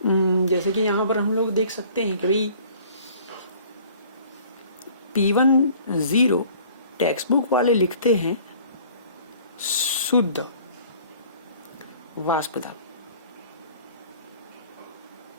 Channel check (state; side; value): inverted; both; correlation -0.52